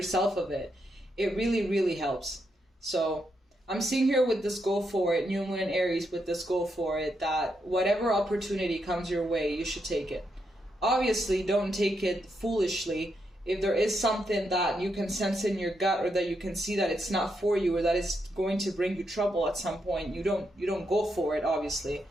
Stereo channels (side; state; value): both; normal; correlation 0.81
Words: of it. It really, really helps. So I'm seeing here with this go for it, new moon in Aries with this go for it, that whatever opportunity comes your way, you should take it. Obviously, don't take it foolishly. If there is something that you can sense in your gut, or that you can see that it's not for you, or that it's going to bring you trouble at some point, you don't go for it, obviously.